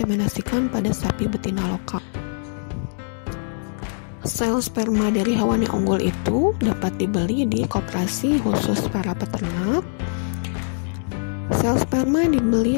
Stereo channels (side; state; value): right; silent; 64 dB below the other